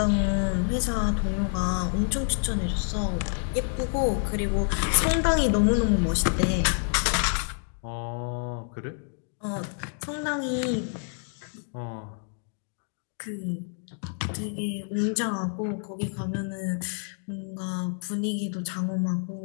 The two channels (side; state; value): right; silent; 59 dB below the other